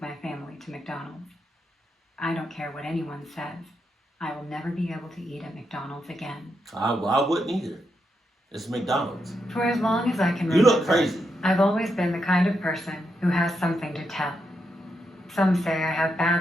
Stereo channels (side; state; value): both; normal; correlation 0.83